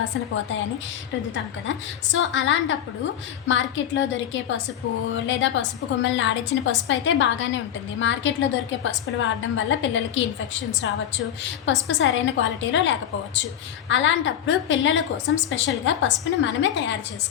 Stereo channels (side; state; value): right; quieter; 10.2 dB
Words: పోతాయని రుద్దుతాం కదా. సో అలాంటప్పుడు మార్కెట్లో దొరికే పసుపు లేదా పసుపు కొమ్మల్ని ఆడించిన పసుపు అయితే బాగానే ఉంటుంది. మార్కెట్లో దొరికే పసుపులు వాడడం వల్ల పిల్లలకి ఇన్ఫెక్షన్స్ రావచ్చు, పసుపు సరైన క్వాలిటీలో లేకపోవచ్చు. అలాంటప్పుడు పిల్లల కోసం స్పెషల్గా పసుపుని మనమే తయారు